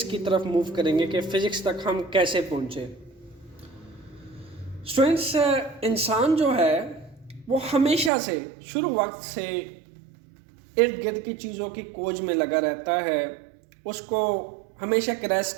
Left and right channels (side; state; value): left; drops out; at 8.1 s